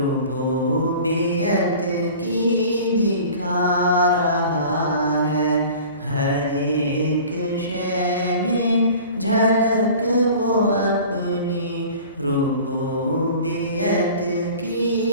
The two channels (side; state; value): both; inverted; correlation -0.43